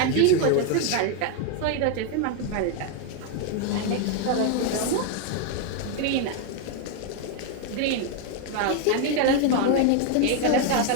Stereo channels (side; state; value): both; different; correlation 0.01